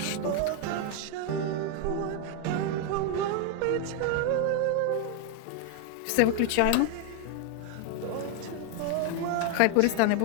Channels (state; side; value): different; both; correlation 0.01